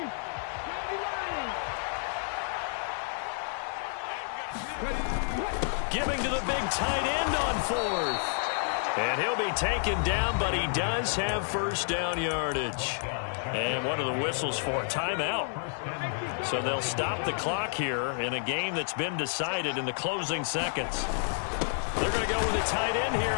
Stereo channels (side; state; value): right; silent; digital silence